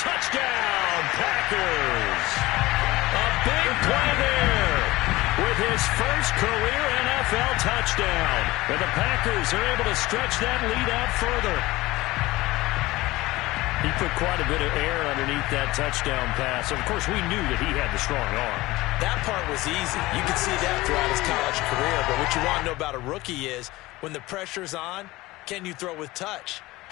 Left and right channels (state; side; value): quieter; right; 19.3 dB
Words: Packers. A big play there with his first career NFL touchdown. And the Packers are able to stretch that lead out further. He put quite a bit of air underneath that touchdown pass. Of course, we knew that he had the strong arm. That part was easy. You could see that throughout his college career. But what you want to know about a rookie is when the pressure's on, can you throw with touch?